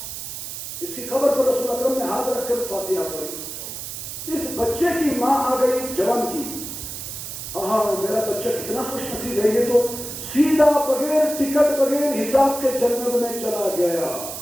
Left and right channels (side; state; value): right; noise; hiss, 8 dB below the sound